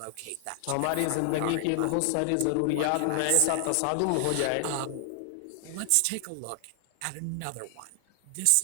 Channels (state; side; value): different; both; correlation 0.00